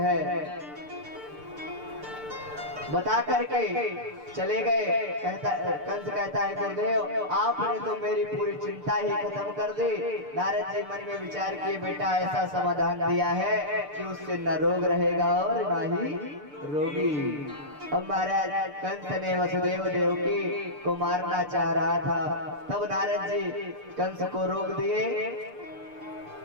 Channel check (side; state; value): left; late; 6.7 ms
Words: बता करके चले गए। कंस कहता है गुरुदेव आपने तो मेरी पूरी चिंता ही खत्म कर दी। नारद जी मन में विचार किए बेटा ऐसा समाधान दिया है कि उससे न रोग रहेगा और न ही रोगी। अब महाराज कंस ने वसुदेव देवकी को मारना चाह रहा था, तब नारद जी कंस को रोक दिए